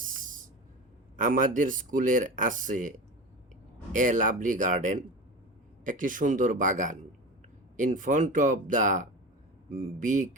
আমাদের স্কুলের আছে এ লাভলি গার্ডেন, একটি সুন্দর বাগান, in front of the big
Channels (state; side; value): normal; both; correlation 0.29